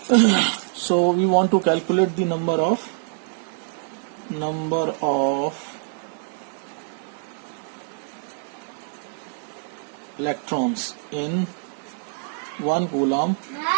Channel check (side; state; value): left; silent; digital silence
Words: so we want to calculate the number of electrons in 1 coulomb